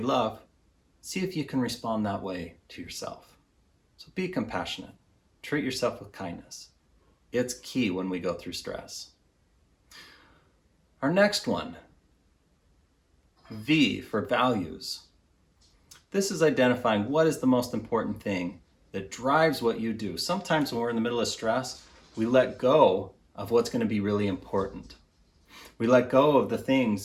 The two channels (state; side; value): identical; both; correlation 1.00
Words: see if you can respond that way to yourself. So be compassionate. Treat yourself with kindness. It's key when we go through stress. Our next one, V for values. This is identifying what is the most important thing that drives what you do. Sometimes when we're in the middle of stress, we let go of what's going to be really important. We let go of the